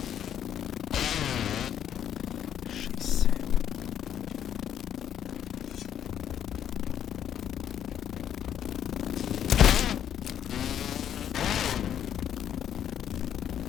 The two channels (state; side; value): quieter; right; 9.9 dB